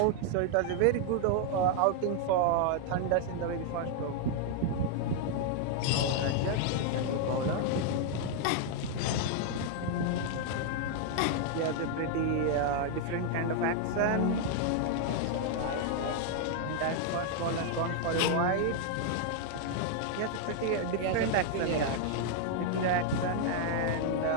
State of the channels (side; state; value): both; different; correlation 0.00